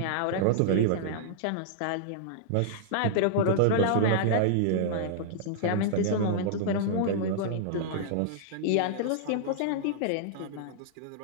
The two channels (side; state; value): both; different; correlation -0.01